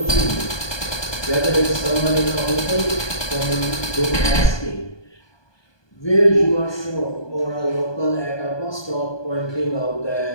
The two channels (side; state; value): right; late; 1.2 ms